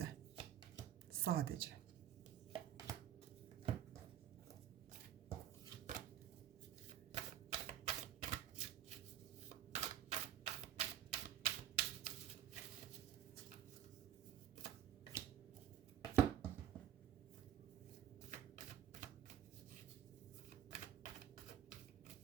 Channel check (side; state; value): left; quieter; 10.8 dB